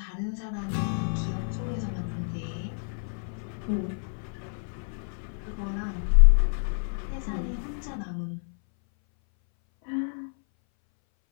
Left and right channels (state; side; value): silent; right; 59 dB below the other